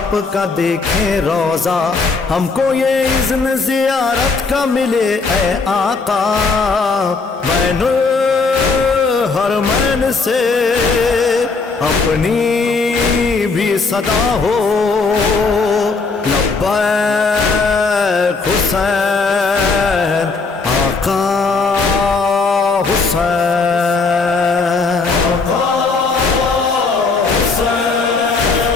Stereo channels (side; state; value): right; quieter; 4.2 dB